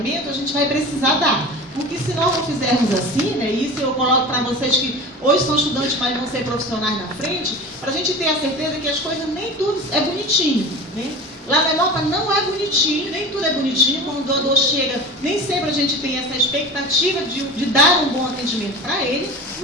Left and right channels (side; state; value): both; normal; correlation 0.34